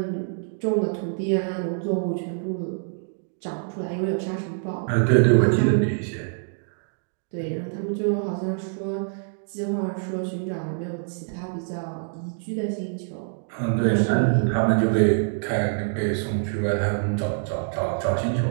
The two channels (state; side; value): silent; left; digital silence